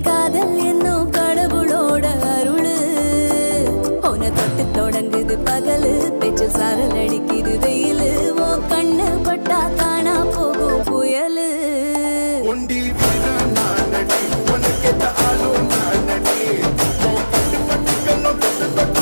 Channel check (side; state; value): both; inverted; correlation -1.00